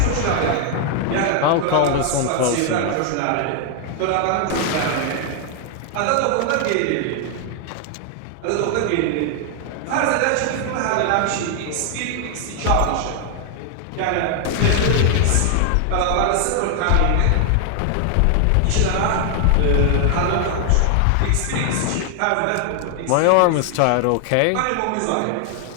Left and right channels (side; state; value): both; different; correlation 0.00